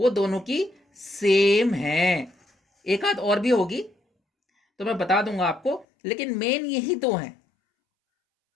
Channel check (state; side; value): drops out; right; at 5.9 s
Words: दोनों की सेम हैं। एक आध और भी होगी तो मैं बता दूंगा आपको, लेकिन मेन यही दो हैं।